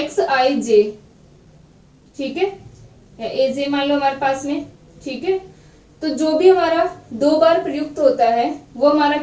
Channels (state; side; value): identical; both; correlation 1.00